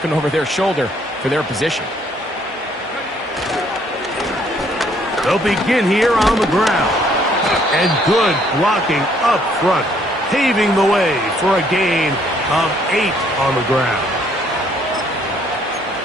over their shoulder for their position. They'll begin here on the ground. And good blocking up front. paving the way for a gain of 8 on the ground.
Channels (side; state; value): both; normal; correlation 0.65